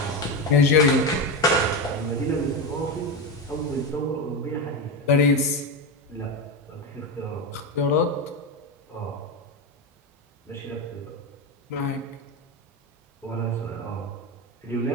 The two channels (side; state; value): both; normal; correlation 0.15